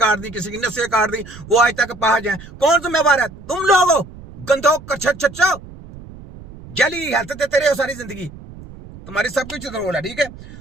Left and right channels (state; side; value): noise; right; rumble, 17 dB below the sound